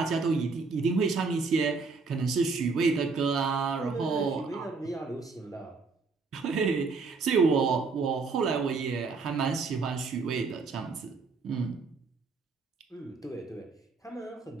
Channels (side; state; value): left; quieter; 4.4 dB